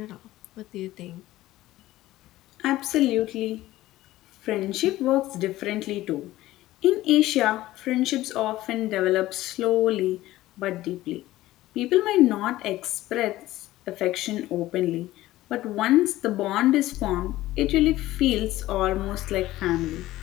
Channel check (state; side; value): quieter; right; 16.1 dB